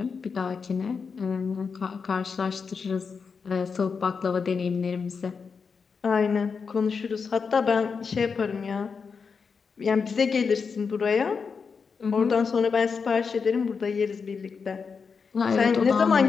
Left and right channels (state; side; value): quieter; right; 5.5 dB